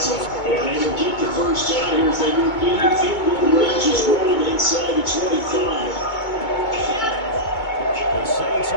And they will get the first down here as they move in the field goal range is rolling inside the 25. The Saints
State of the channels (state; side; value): late; right; 2.2 ms